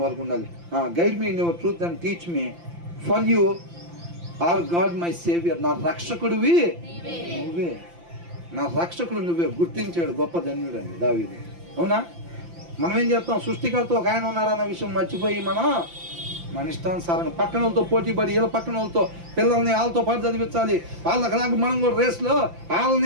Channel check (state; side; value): late; left; 5.8 ms